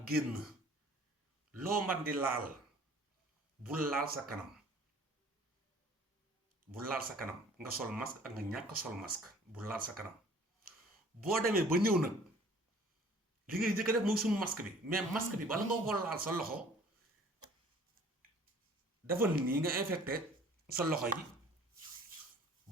génn loo man di laal bul laal sa kanam bu laal sa kanam nga sol masque ak nga ñàkk sol masque bu laal sa kanam boo demee ba ñëw nag li ngay njëkk a def mooy suñu masque bi mais masque bi bala nga ko laal sa loxo dafa nii nga infecté sa loxo yi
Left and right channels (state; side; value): normal; both; correlation 0.52